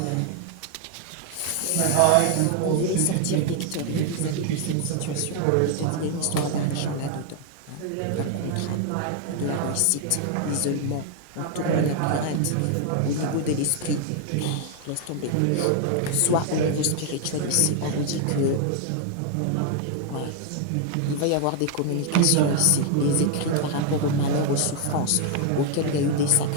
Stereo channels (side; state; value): both; different; correlation 0.00